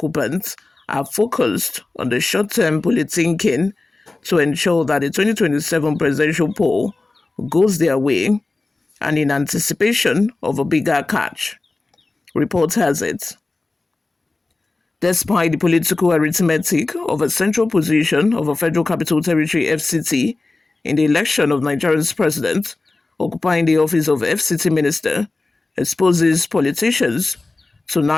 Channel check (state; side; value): quieter; right; 3.3 dB